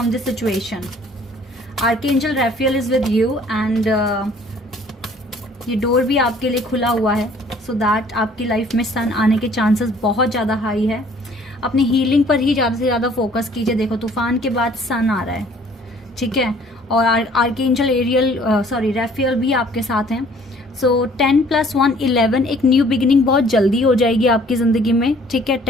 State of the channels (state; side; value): normal; both; correlation 0.56